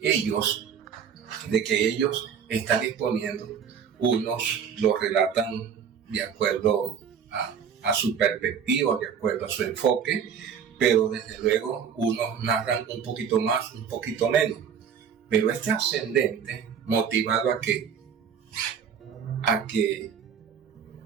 ellos están exponiendo, unos lo relatan de acuerdo a su perspectiva, de acuerdo a su enfoque, pero desde luego unos narran un poquito más, un poquito menos. Pero es trascendente, motivado a que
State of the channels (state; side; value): quieter; left; 7.4 dB